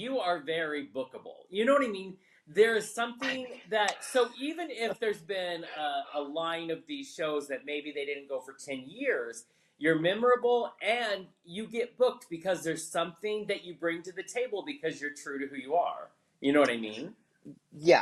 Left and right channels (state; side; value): identical; both; correlation 1.00